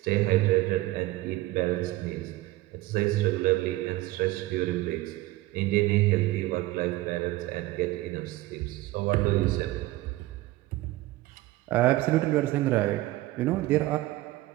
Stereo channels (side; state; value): left; quieter; 17.9 dB